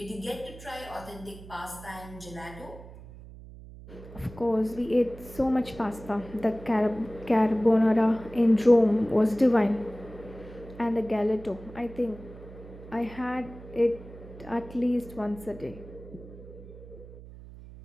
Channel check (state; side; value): noise; right; hum, 16 dB below the sound